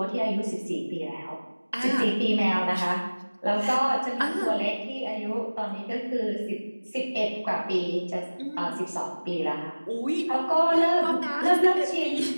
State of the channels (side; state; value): both; inverted; correlation -1.00